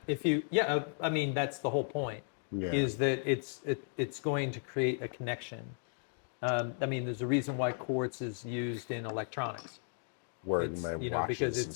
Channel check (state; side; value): silent; right; digital silence